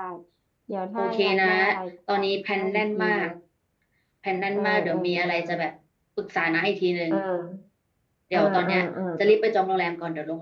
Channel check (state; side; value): identical; both; correlation 1.00